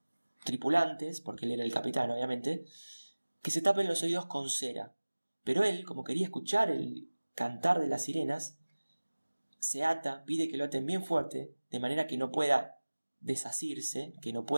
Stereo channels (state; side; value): inverted; both; correlation -1.00